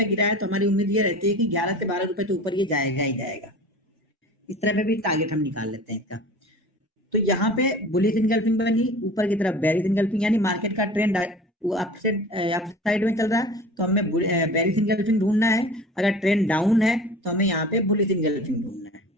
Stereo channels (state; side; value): normal; both; correlation 0.39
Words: गिरा है, तो हमारी उम्मीद ये रहती है कि 11 से 12 रुपए तो ऊपर ये जाएगा ही जाएगा। इस तरह पे भी टारगेट हम निकाल लेते हैं इसका। तो यहाँ पे बुलिश इनगल्फिंग बनी, ऊपर की तरफ बेरिश इनगल्फिंग, यानी मार्केट का ट्रेंड वो अप साइड में चल रहा है, तो हमें बेरिश इनगल्फिंग ढूंढना है। अगर ट्रेंड डाउन है तो हमें यहाँ पे बुलिश इनगल्फिंग ढूंढना है।